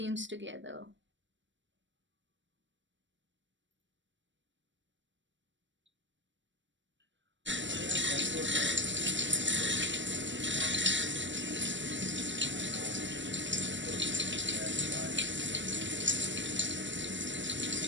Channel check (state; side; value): late; left; 0.54 ms